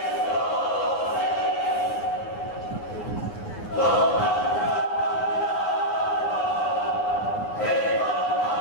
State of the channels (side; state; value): right; late; 9.7 ms